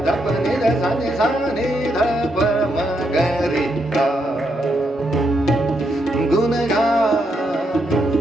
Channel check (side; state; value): both; normal; correlation 0.79